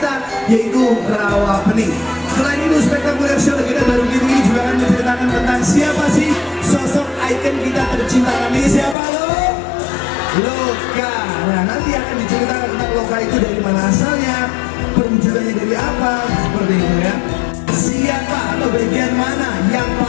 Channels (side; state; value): right; drops out; at 9.0 s